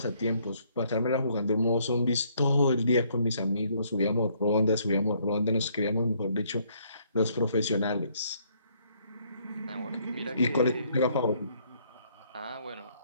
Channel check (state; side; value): inverted; both; correlation -0.67